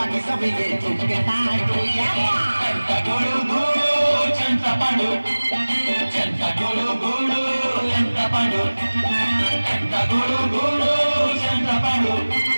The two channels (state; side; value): inverted; both; correlation -1.00